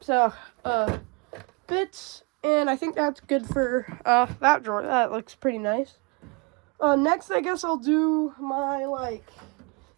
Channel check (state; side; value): quieter; left; 31.7 dB